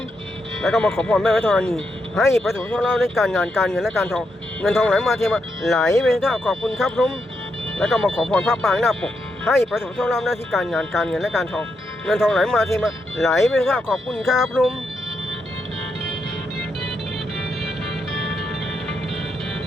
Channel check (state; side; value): normal; both; correlation 0.82